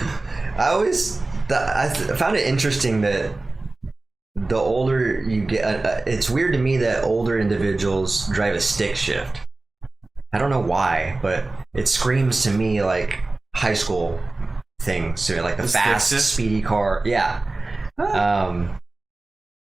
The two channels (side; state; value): left; quieter; 3.1 dB